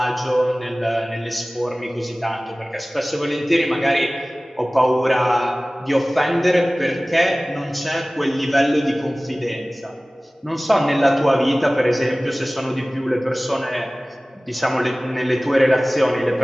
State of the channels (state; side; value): normal; both; correlation 0.98